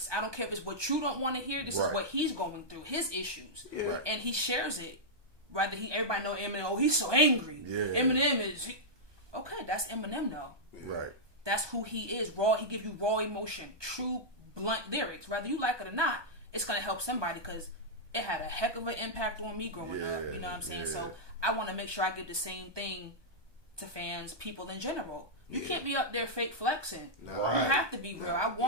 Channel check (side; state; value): left; late; 1.2 ms